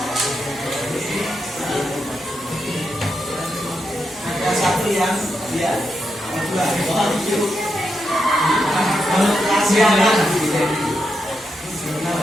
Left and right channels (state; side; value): normal; both; correlation 0.84